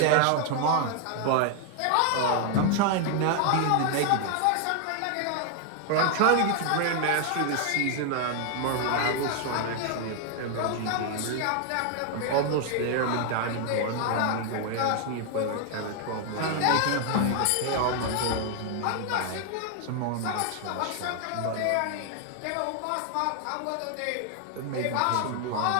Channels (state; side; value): different; both; correlation 0.00